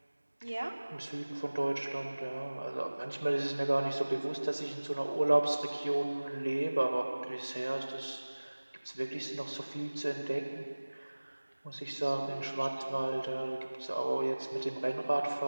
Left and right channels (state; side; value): inverted; both; correlation -1.00